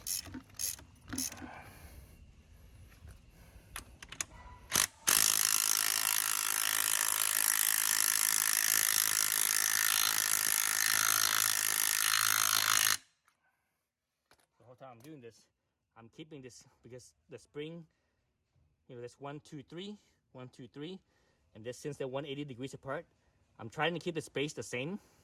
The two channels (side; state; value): both; identical; correlation 1.00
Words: The whole time I'm doing this, I'm keeping this because the spring, there's 1, 2, 3, 1, 2, 3, and this, since they're 180 degrees apart, I'm trying to keep the space the same,